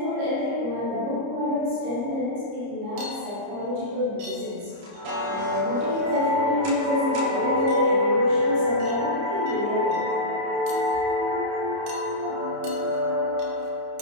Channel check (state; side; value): late; left; 29 ms